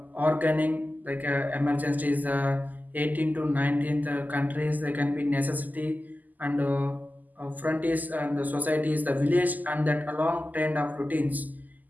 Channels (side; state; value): left; late; 0.082 ms